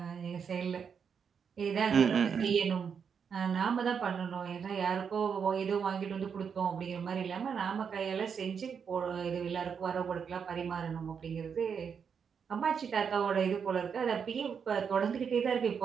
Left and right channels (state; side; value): quieter; left; 6.7 dB